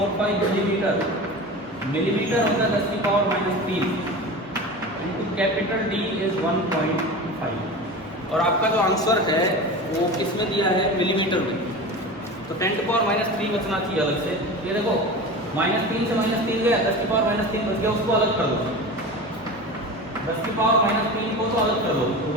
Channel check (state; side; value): normal; both; correlation 0.31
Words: मिलीमीटर। मिलीमीटर होता है 10 की power -3 into capital D is 1.5। और आपका जो आंसर है वो किसमें दिया है? मिलीमीटर में। तो 10 की पावर -3 बचना चाहिए अलग से। ये देखो -3 से -3 गया, 10 की पावर -3 बच गया, उसको अलग कर दो। 10 की पावर -3 को तो अलग कर दो तो